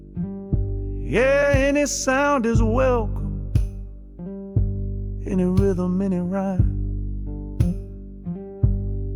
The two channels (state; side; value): identical; both; correlation 1.00